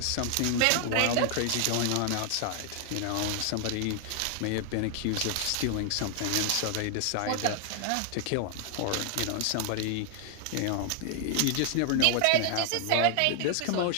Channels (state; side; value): different; both; correlation 0.00